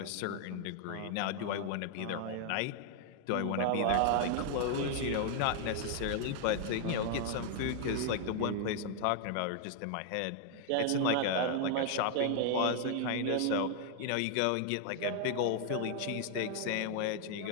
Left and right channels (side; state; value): both; different; correlation 0.00